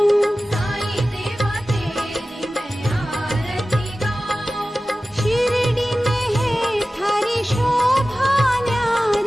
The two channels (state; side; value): normal; both; correlation 0.96